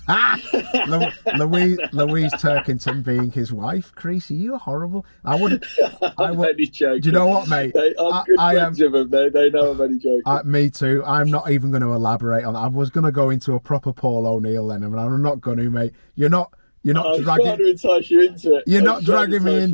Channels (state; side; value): inverted; both; correlation -1.00